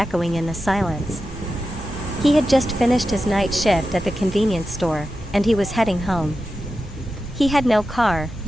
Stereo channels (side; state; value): left; noise; hum, 18 dB below the sound